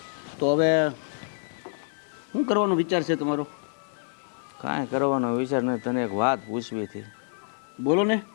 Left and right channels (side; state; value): right; silent; digital silence